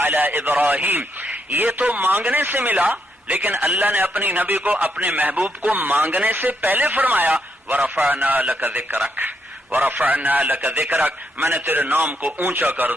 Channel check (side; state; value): both; normal; correlation 0.78